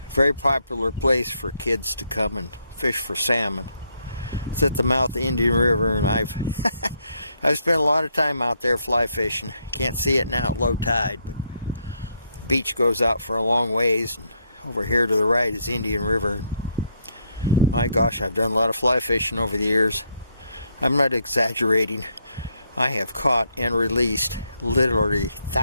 Very popular place for kids to come and fish for salmon. It's at the mouth of the Indian River, and I've spent a lot of time out there fly fishing. Can't see it now at low tide, but the beach goes out for a long ways, and over here to the right is Indian River. My gosh, I've done a lot of fly fishing over the years. I'm not exaggerating. I have caught and released literally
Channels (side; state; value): both; inverted; correlation -0.74